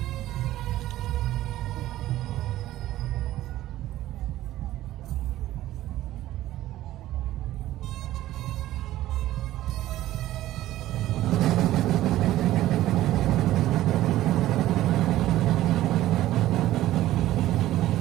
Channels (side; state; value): left; quieter; 14.7 dB